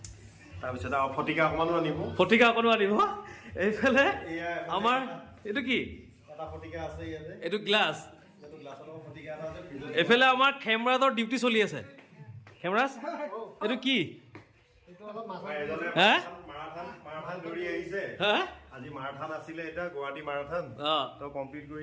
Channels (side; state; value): both; identical; correlation 1.00